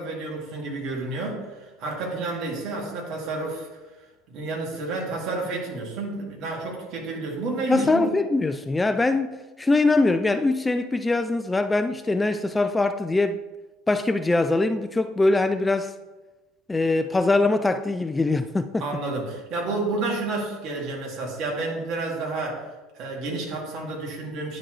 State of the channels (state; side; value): normal; both; correlation 0.79